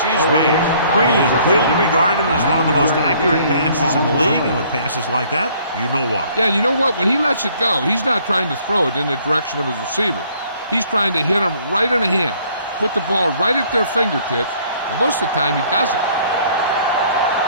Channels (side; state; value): both; inverted; correlation -0.60